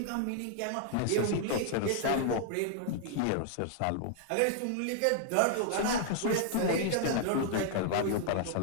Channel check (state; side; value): different; both; correlation 0.00